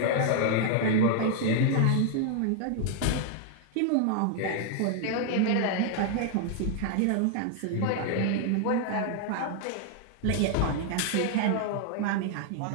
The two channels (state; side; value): different; both; correlation 0.00